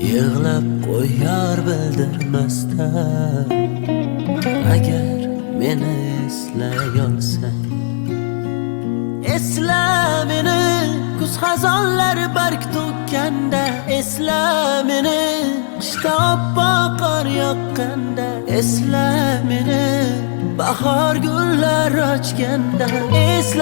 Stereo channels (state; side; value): silent; right; 67 dB below the other